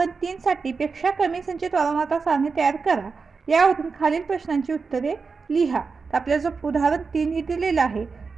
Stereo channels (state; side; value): quieter; left; 4.8 dB